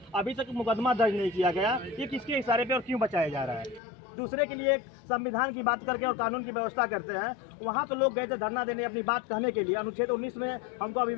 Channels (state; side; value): drops out; right; at 3.8 s